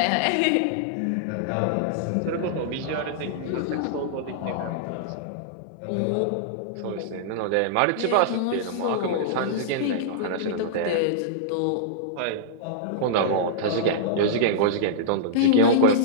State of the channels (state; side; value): different; both; correlation -0.02